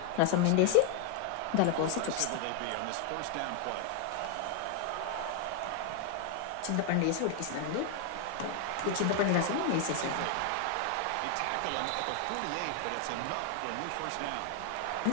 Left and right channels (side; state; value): both; different; correlation 0.00